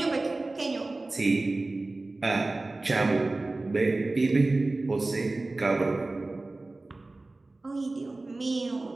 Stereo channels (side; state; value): left; quieter; 3.1 dB